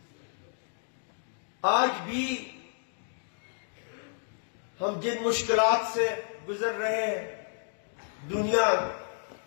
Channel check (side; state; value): right; silent; digital silence